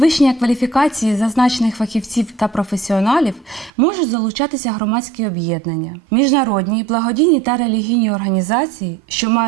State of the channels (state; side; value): drops out; left; at 3.7 s